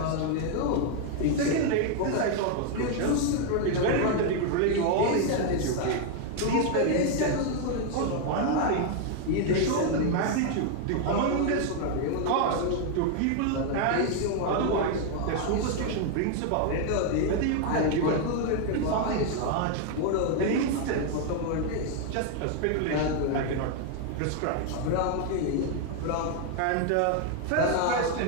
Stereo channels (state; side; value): different; both; correlation 0.00